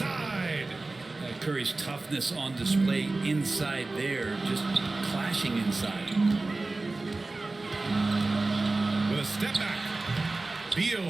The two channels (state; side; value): quieter; left; 3.3 dB